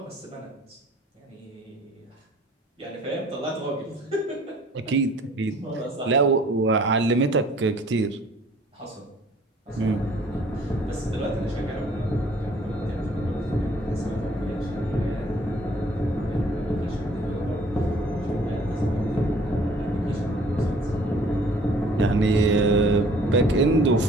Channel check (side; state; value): both; normal; correlation 0.55